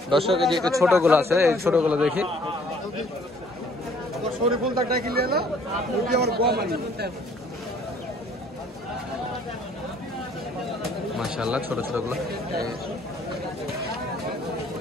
দর্শক, এই যে একটু ছোট গোলা আছে, এই ছোট গোলা দেখি। মাশাআল্লাহ, ছোট ছোট গুলো।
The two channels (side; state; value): both; normal; correlation 0.60